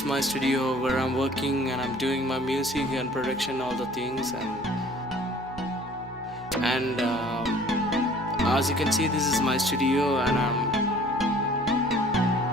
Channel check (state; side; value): noise; right; hum, 21 dB below the sound